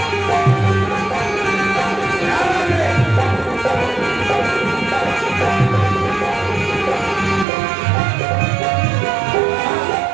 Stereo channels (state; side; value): drops out; left; at 7.5 s